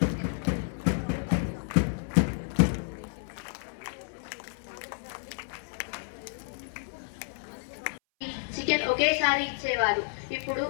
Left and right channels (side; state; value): right; silent; 58 dB below the other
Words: chicken ఒకేసారి ఇచ్చేవారు, ఇప్పుడు